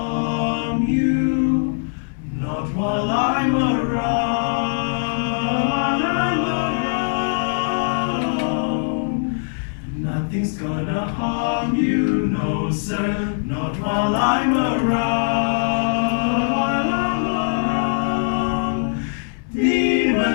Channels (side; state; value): right; silent; digital silence